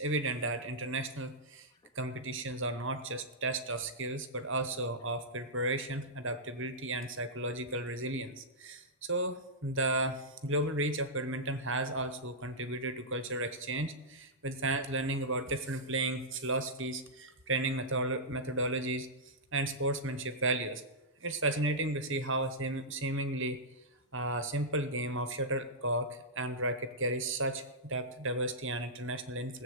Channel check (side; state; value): both; normal; correlation -0.12